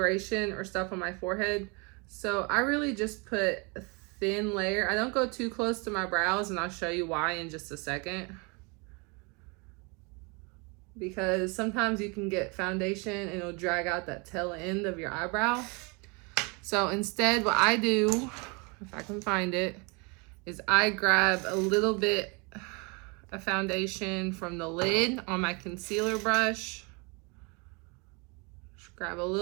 or stuff on my forehead, so I really just put a thin layer. I don't go too close to my brows, and I'll show you why in just a second. Because sometimes you can get foundation and it'll drag out that tail end of your eyebrow. So instead, what I do, if I can find it, is I grab a little bit of foundation from the lid on my concealer brush. Just grab a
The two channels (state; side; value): quieter; left; 30.8 dB